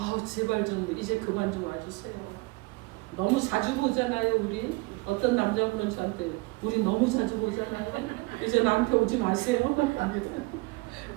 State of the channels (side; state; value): left; quieter; 25.1 dB